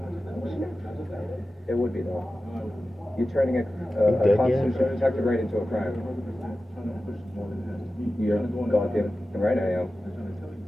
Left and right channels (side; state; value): both; normal; correlation 0.94